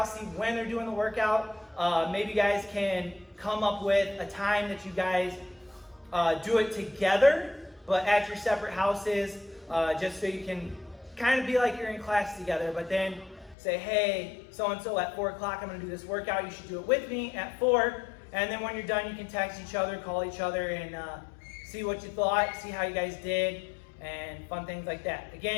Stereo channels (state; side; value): drops out; right; at 13.6 s